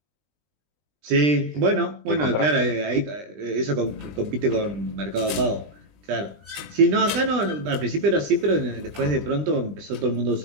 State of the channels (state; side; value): late; left; 20 ms